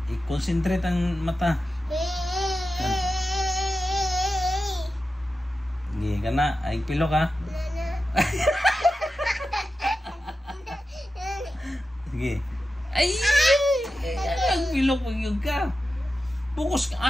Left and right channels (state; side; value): normal; both; correlation 0.92